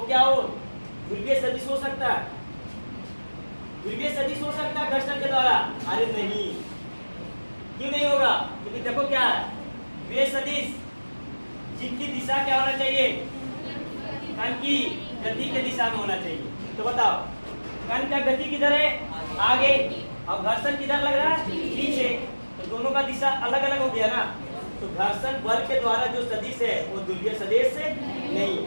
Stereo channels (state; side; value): inverted; both; correlation -1.00